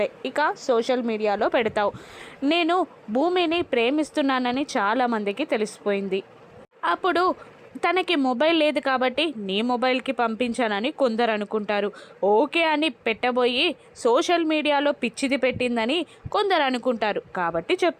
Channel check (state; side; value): identical; both; correlation 1.00